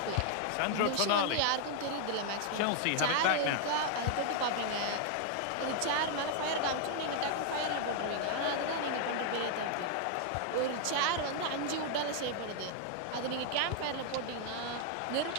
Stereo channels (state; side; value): different; both; correlation 0.00